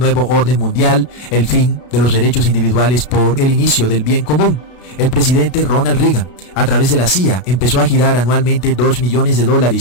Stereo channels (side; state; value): right; late; 33 ms